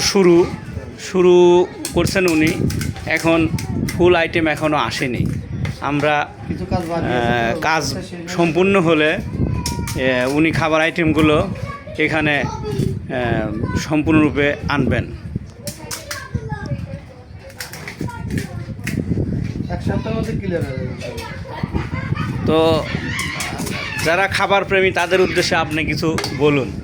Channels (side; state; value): both; identical; correlation 1.00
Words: শুরু করছেন উনি, এখন ফুল আইটেম এখনও আসেনি। আমরা কিছু কাজ কাজ সম্পূর্ণ হলে উনি খাবার আইটেমগুলো এখানে সম্পূর্ণরূপে আনবেন। এক সপ্তাহের মধ্যে ক্লিয়ার হয়ে যাবে। তো যারা খাবার প্রেমী তাদের উদ্দেশ্যে আপনি কিছু বলুন।